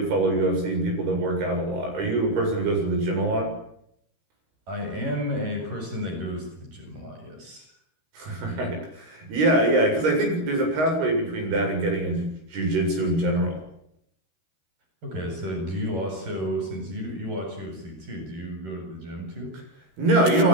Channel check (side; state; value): left; late; 13 ms